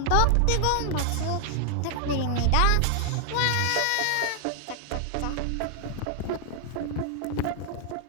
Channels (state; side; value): different; both; correlation 0.00